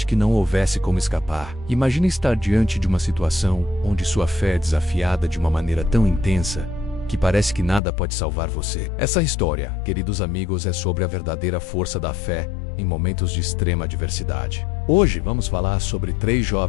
que não houvesse como escapar? Imagine estar diante de uma situação onde sua fé é desafiada de uma maneira tão intensa que parece que nada pode salvar você. Essa história, queridos amigos, é sobre a verdadeira força da fé em momentos de extrema adversidade. Hoje vamos falar sobre 3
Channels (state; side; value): drops out; right; at 7.8 s